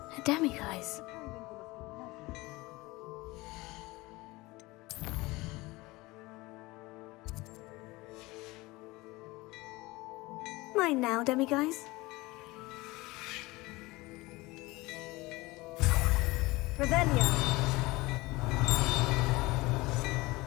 A demiguise. Mine now, demiguise. Revelio.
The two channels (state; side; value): quieter; right; 21.6 dB